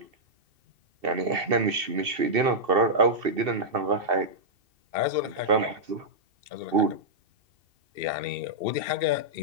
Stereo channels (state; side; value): late; left; 2.7 ms